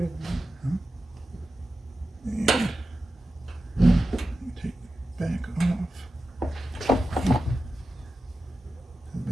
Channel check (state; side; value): normal; both; correlation 0.93